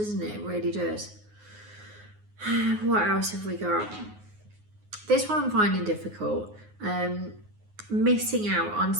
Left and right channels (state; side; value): late; left; 9.5 ms